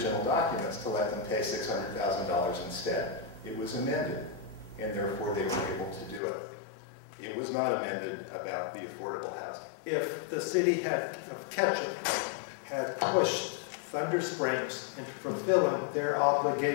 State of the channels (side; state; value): right; drops out; at 6.2 s